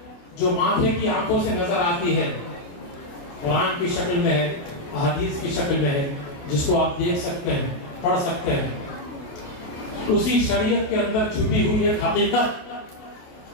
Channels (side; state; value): right; late; 28 ms